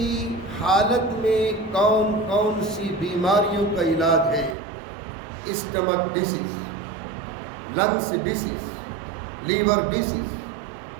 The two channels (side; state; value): left; drops out; at 4.5 s